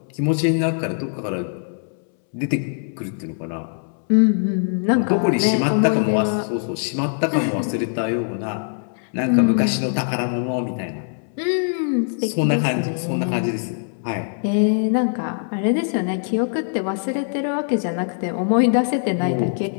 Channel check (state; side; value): silent; right; 64 dB below the other